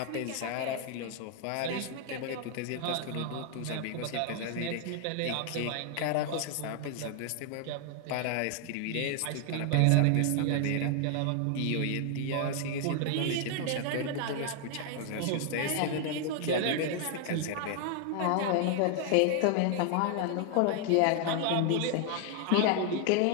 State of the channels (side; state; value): both; different; correlation 0.00